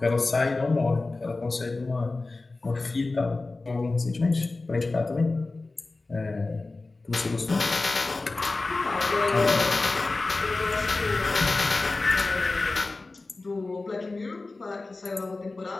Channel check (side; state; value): right; quieter; 3.4 dB